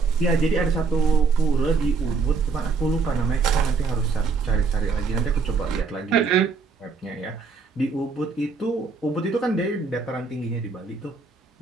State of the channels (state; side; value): quieter; left; 4.7 dB